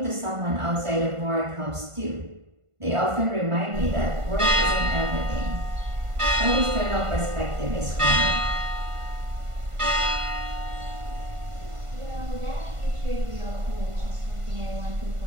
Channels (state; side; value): late; left; 1.5 ms